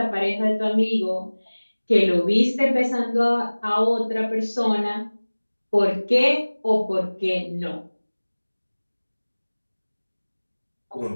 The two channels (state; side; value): inverted; both; correlation -1.00